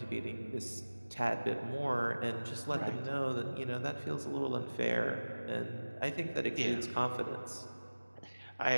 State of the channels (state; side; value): inverted; both; correlation -1.00